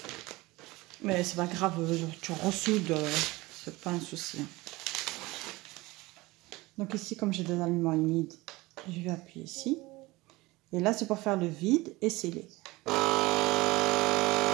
Mais c'est pas grave, tu ressoudes, c'est pas un souci. Donc ici, comme j'ai des aliments humides, je vais appuyer ici. Et là, c'est pour faire le vide et sceller.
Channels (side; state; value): left; quieter; 21.2 dB